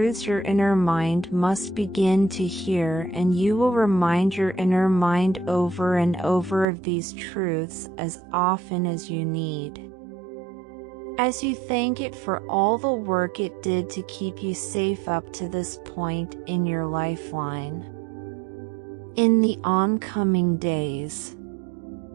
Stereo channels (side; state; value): left; drops out; at 6.7 s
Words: your inner mind must begin to hear, and you will remind your inner mind over and over of these truths as often as you need, as you thank it for all the work it did to keep you safe up to this point in your lifeline. In the oncoming days,